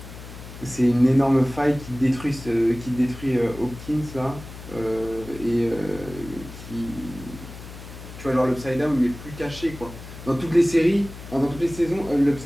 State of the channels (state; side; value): noise; left; hum, 14 dB below the sound